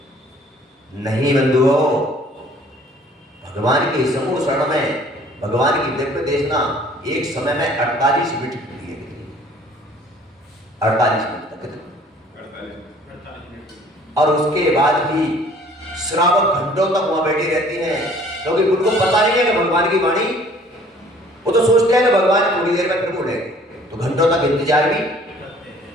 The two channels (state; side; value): normal; both; correlation 0.54